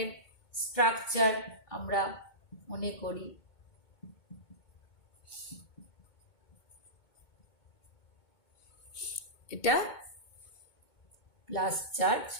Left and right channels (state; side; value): late; right; 2.2 ms